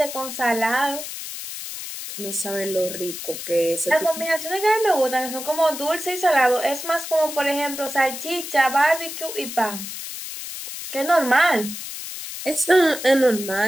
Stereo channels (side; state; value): left; noise; hiss, 8 dB below the sound